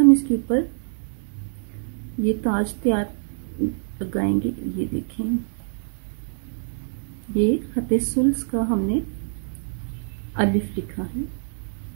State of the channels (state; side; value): silent; left; digital silence